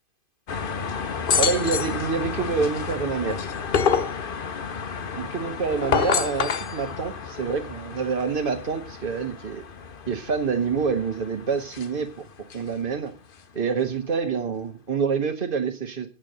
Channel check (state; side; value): late; right; 2.5 ms